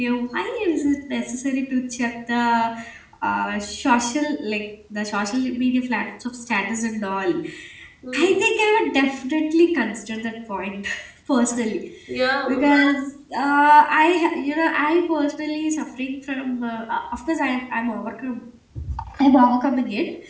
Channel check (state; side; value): identical; both; correlation 1.00